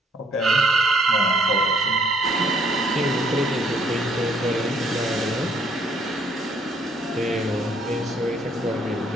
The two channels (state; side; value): normal; both; correlation 0.66